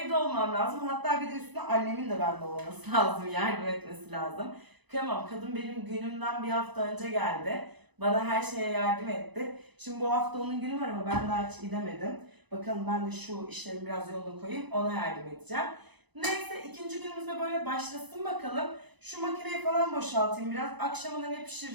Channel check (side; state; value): left; late; 1.0 ms